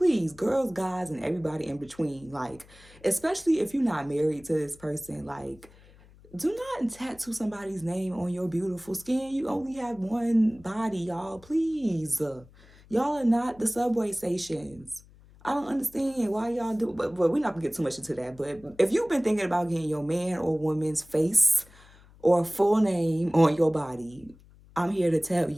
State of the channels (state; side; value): noise; left; hum, 25 dB below the sound